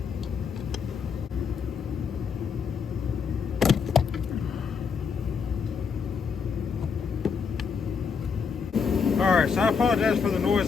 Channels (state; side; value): quieter; right; 5.9 dB